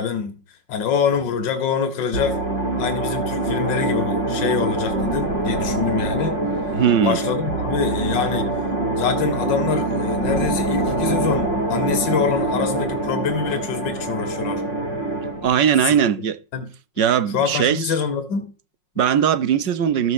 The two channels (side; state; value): right; late; 5.5 ms